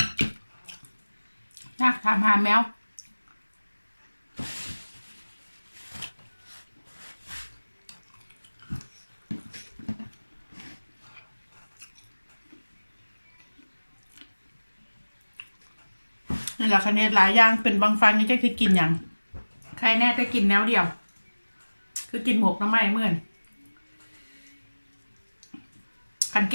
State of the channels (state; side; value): inverted; both; correlation -1.00